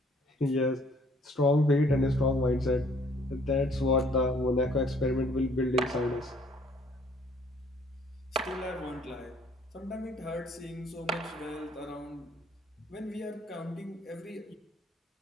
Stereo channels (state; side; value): normal; both; correlation 0.60